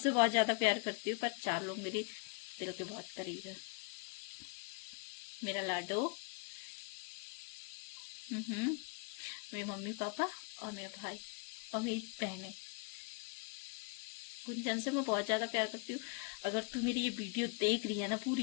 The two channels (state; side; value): quieter; right; 34.9 dB